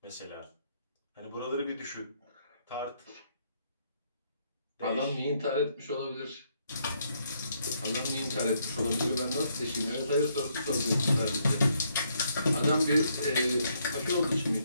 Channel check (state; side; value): inverted; both; correlation -0.73